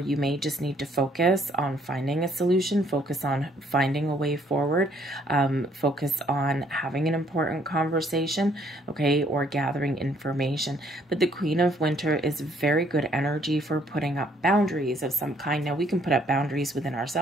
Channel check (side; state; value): both; normal; correlation 0.65